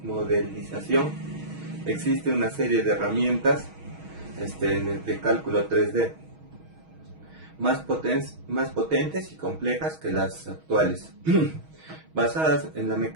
modelización existe una serie de herramientas en el de cálculo 3D más potentes y complejas que las actuales, basadas en la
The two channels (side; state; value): left; late; 6.3 ms